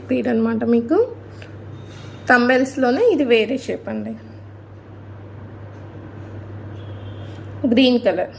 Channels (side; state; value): both; identical; correlation 1.00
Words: బీడ్ అనమాట. మీకు తంబెల్స్లోనే ఇది వేరే షేప్ అండి. Green colour